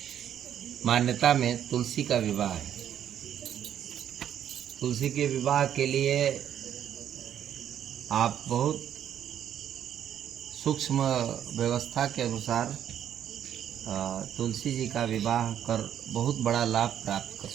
मान्यता में तुलसी का विवाह है। तुलसी के विवाह के लिए आप बहुत सूक्ष्म व्यवस्था के अनुसार तुलसी जी का विवाह कर बहुत बड़ा लाभ प्राप्त कर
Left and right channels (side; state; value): left; quieter; 10.0 dB